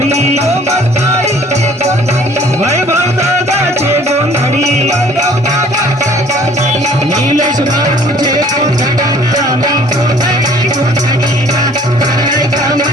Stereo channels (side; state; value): both; normal; correlation 0.54